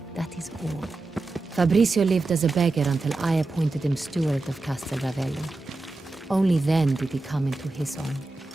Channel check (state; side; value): quieter; left; 3.2 dB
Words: That is all. Fabricio lived as a beggar until I appointed him steward of Castel Ravello. Only then did he come into his own.